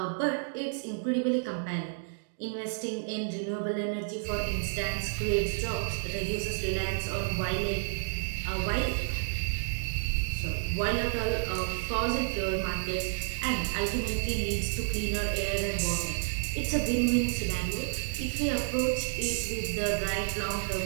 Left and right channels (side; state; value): left; silent; digital silence